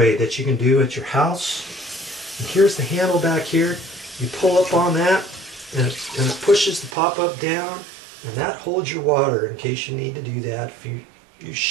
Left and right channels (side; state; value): left; drops out; at 7.0 s